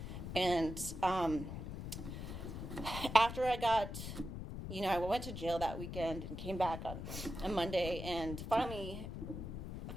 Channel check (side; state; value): left; noise; rumble, 7 dB below the sound